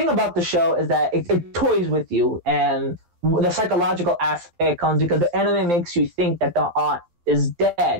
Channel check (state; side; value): late; left; 12 ms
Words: about the show is that it toys with you, and the psychological aspect comes because the anime makes you think that the aunt is